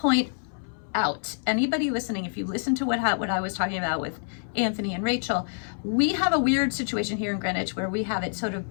out. Anybody listening, if you listen to what I was talking about with Anthony and Rachel, we have a weird situation here in Greenwich where we have it sort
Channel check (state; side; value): silent; right; 60 dB below the other